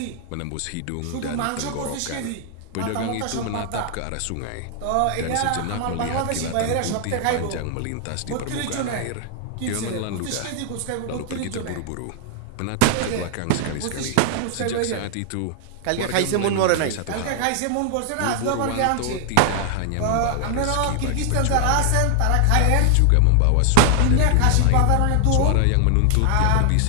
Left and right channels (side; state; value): both; different; correlation 0.00